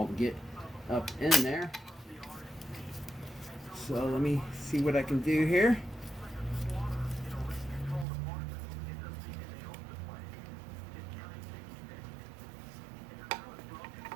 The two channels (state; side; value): drops out; left; at 8.1 s